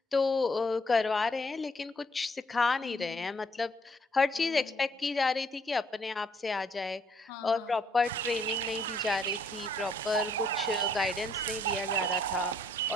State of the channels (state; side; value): normal; both; correlation 0.67